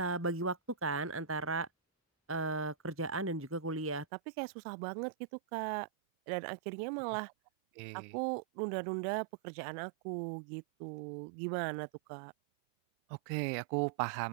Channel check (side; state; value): left; drops out; at 4.0 s